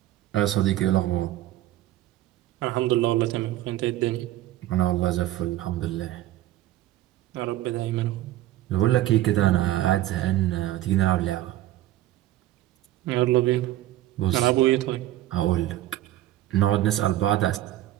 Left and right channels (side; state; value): left; quieter; 14.6 dB